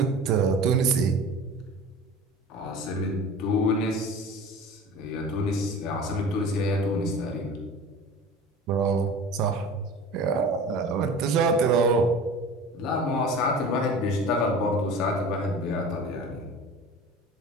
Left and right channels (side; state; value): both; normal; correlation 0.38